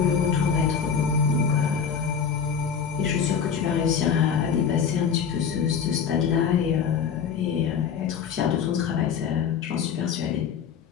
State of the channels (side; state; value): right; quieter; 7.0 dB